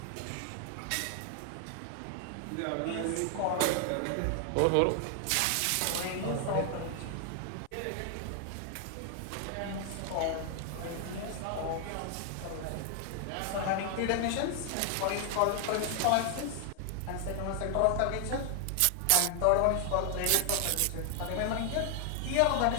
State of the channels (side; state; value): both; different; correlation 0.00